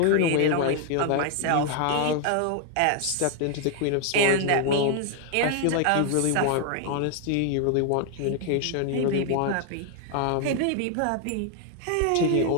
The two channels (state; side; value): different; both; correlation 0.00